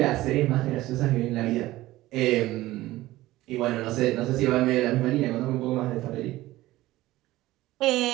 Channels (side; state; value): left; quieter; 17.0 dB